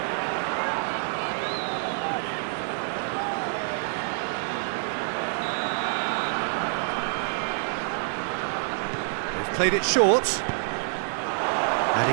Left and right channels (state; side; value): silent; left; 60 dB below the other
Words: Played it short, and